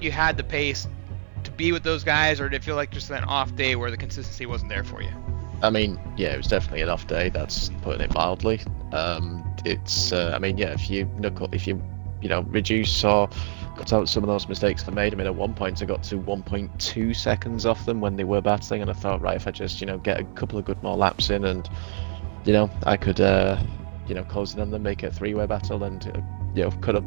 you had the pace to be with those guys, or did it feel like just an off day where the consistency wasn't there for you? I mean, yeah, it was definitely an off day. That's putting it mildly. If you reduce or cut out some of those mistakes they made. I mean, at one point I got to 1.2 seconds off them when they were battling, and I thought, right, if I just get a couple of good more laps in, and I could close in on them, make it a 3-way battle, and could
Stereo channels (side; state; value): left; silent; digital silence